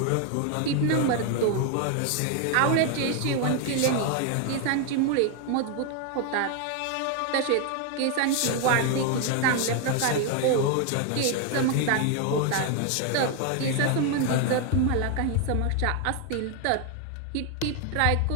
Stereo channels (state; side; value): different; both; correlation 0.01